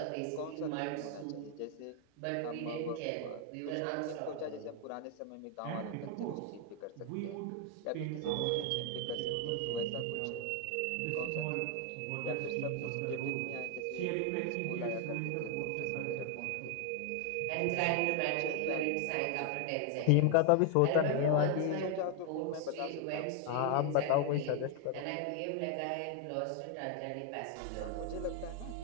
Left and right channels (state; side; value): different; both; correlation 0.00